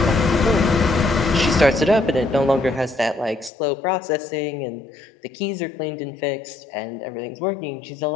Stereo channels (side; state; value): right; drops out; at 3.5 s